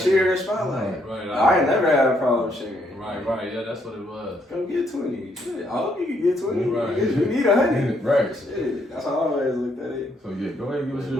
the spotlight. Right. I ain't never had a problem sharing. Right, yeah, that's what it was. Come get 20. Shit, I hope you can get 20. Right. You need 100. Right. Shit, that's how I always looked at it. So yeah, go ahead and give us your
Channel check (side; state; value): both; normal; correlation 0.72